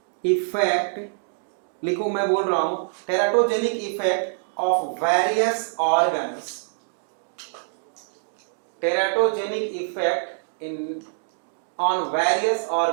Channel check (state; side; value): silent; left; digital silence